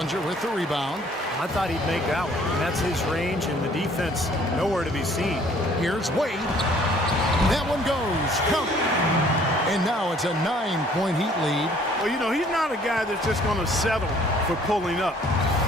with the rebound. I thought he'd make that one. And that's his range, and the defense nowhere to be seen. Here's Wade. That one goes. Count. And now it's a 9-point Heat lead. Well, you know, he's not a guy that's just going to settle for pulling up.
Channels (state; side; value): normal; both; correlation 0.58